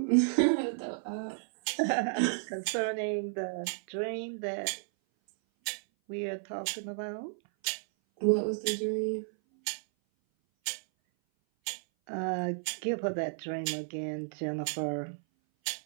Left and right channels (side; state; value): left; silent; 56 dB below the other